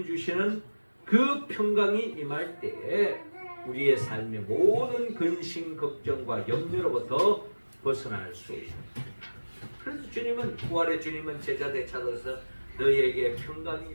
주시는 그 평강이 임할 때에 우리의 삶의 모든 근심, 걱정과 염려로부터 벗어날 수 있습니다. 그래서 주님은, 부활의 주님은 제자들에 찾아서 너희에게 평강이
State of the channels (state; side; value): inverted; both; correlation -1.00